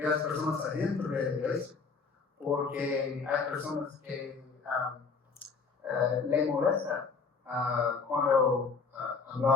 las personas adentro de la iglesia, porque hay personas que le molesta cuando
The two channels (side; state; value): right; quieter; 4.8 dB